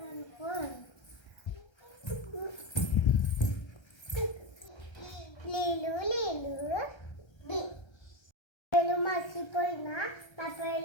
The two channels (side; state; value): right; late; 1.3 ms